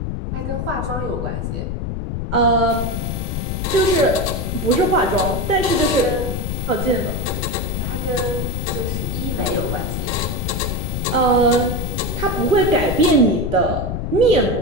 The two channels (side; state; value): left; noise; rumble, 3 dB below the sound